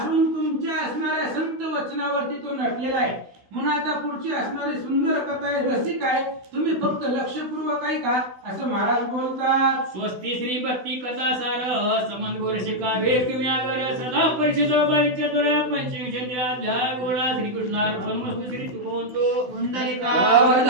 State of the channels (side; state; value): left; late; 16 ms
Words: तुमच्या असणाऱ्या संत वचनावरती तो नटलेला आहे. म्हणून आता पुढची असणारी सुंदर कथा आहे, रसिक आहे, तुम्ही फक्त लक्षपूर्वक ऐका असं महाराज बोलतात. स्वस्ती श्री भक्ती कथा सार समंत गोरशिका वेकम्यागर सदा परिषदा बाईच्या दोऱ्या पंचविंशत्या अध्याय गोळा श्रीकृष्णार्पण मस्तु. श्री तुकोंतो